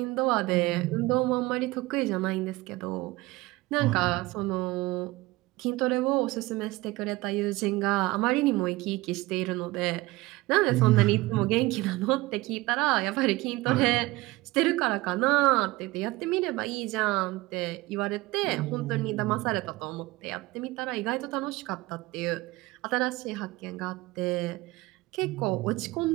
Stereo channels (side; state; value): left; quieter; 20.4 dB